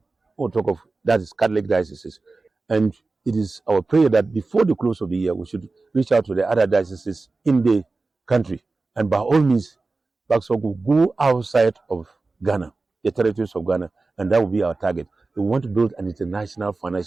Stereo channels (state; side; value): quieter; left; 3.6 dB